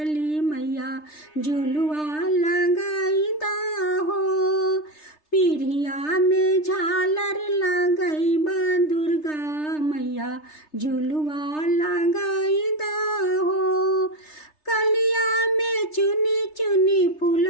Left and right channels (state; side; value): late; right; 3.3 ms